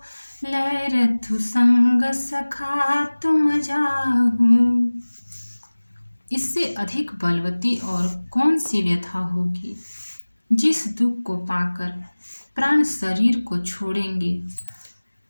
लय रथु संग सखा तुम जाहु। इससे अधिक बलवती और कौन सी व्यथा होगी। जिस दुख को पाकर प्राण शरीर को छोड़ेंगे।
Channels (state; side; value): inverted; both; correlation -1.00